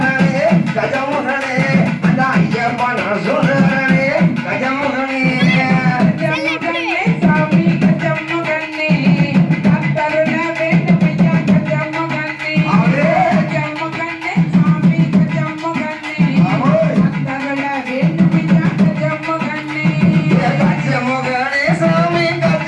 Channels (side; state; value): both; identical; correlation 1.00